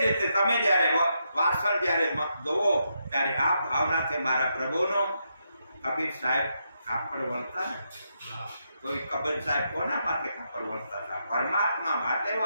રીતે તમે જ્યારે વાસણ જ્યારે ધોવો ત્યારે આ ભાવનાથી મારા પ્રભુનો. કબીર સાહેબ કાપડ વણતા ને તો એ કબીર સાહેબ કોના માટે કાપડ વણતા હતા? પરમાત્મા માટે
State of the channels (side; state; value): both; inverted; correlation -0.81